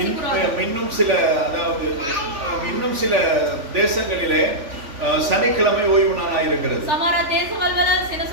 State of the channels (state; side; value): late; left; 3.5 ms